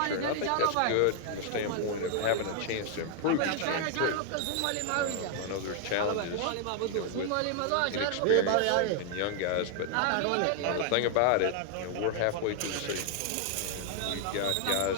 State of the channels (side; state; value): both; different; correlation 0.00